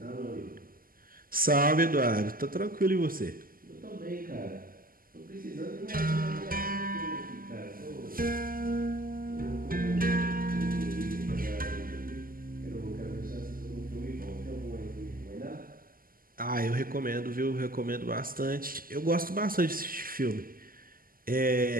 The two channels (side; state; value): left; late; 0.42 ms